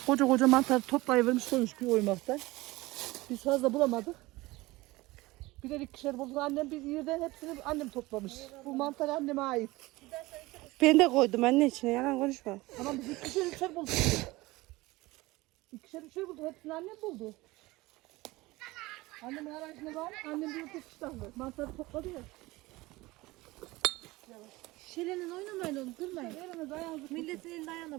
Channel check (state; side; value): quieter; left; 20.4 dB